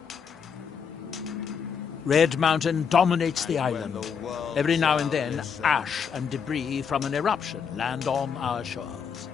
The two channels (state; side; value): quieter; right; 6.7 dB